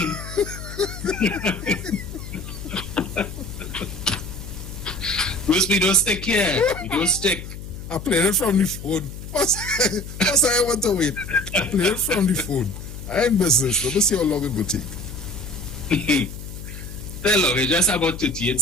Bruce, we don't stick here. We don't stick. I played it from the phone. What's I want to wait? I played it from the phone. I ain't business. Let me see how long it will take. Hello, it's just about 38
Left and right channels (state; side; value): noise; left; hum, 11 dB below the sound